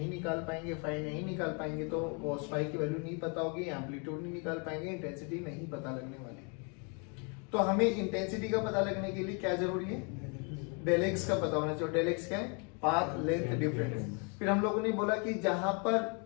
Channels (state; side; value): quieter; right; 36.1 dB